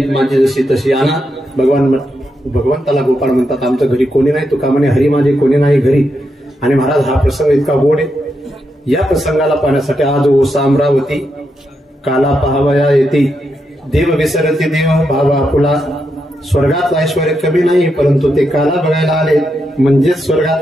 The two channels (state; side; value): normal; both; correlation 0.83